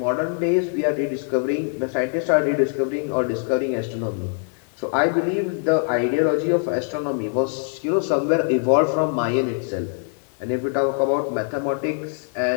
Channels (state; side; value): silent; right; 56 dB below the other